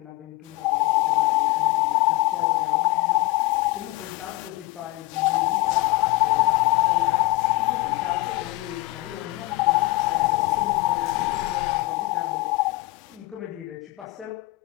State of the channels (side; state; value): right; quieter; 21.2 dB